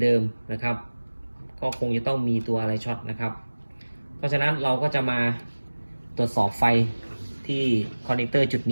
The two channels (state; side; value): inverted; both; correlation -1.00